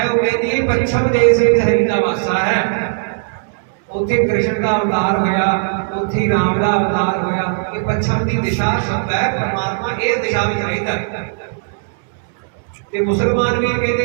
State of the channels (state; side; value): silent; left; 66 dB below the other